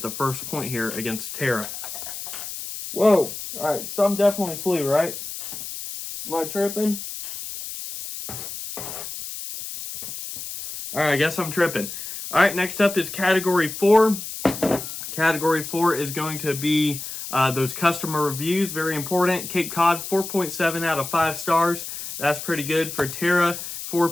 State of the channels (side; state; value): left; noise; hiss, 8 dB below the sound